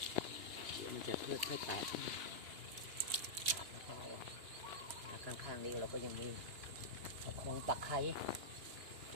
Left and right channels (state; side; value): late; left; 2.8 ms